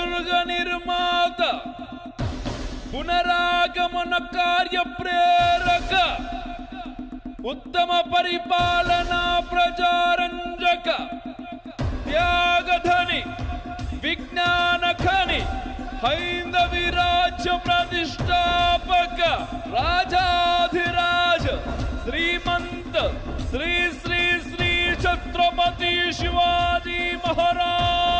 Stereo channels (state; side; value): identical; both; correlation 1.00